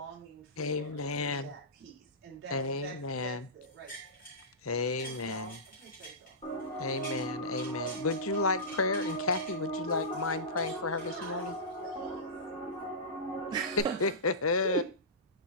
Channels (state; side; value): normal; both; correlation -0.19